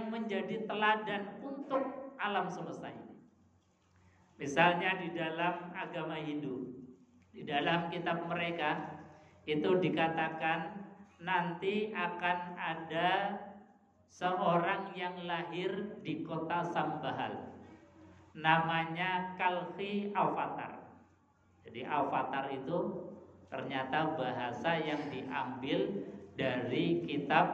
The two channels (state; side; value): identical; both; correlation 1.00